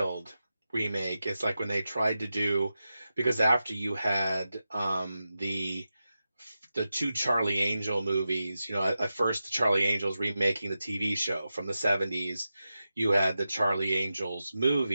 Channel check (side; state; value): both; inverted; correlation -0.91